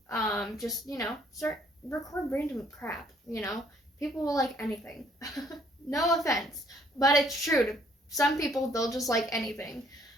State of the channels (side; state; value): both; normal; correlation 0.64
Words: Just, start record random crap, People will like anything. No offense, but it's true. To some people, they'll just like anything.